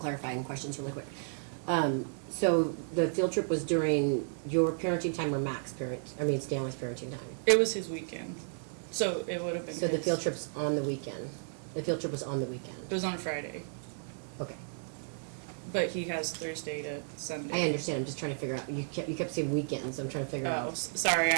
questions really quick? So the field trip was during your parenting time or Stanley's parenting time? It was his weekend, so it would have been So the his. field trip's on the weekend? The field trip was on the weekend? It was on a Friday, Okay. but he has Thursday to Sunday. I understand, I'm just trying to figure out, you kept saying weekends, I'm trying to figure Oh, out sorry,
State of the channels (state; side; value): silent; left; digital silence